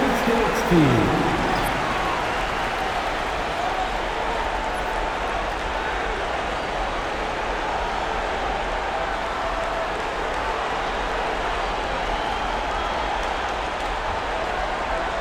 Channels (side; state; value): both; identical; correlation 1.00